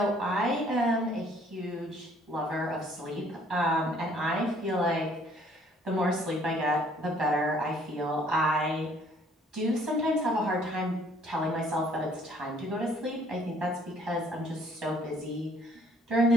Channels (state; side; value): normal; both; correlation 0.60